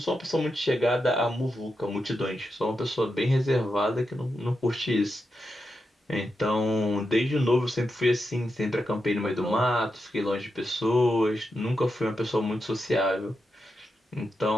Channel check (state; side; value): normal; both; correlation 0.87